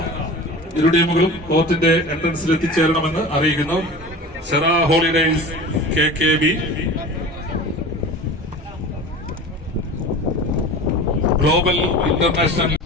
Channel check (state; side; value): normal; both; correlation 0.35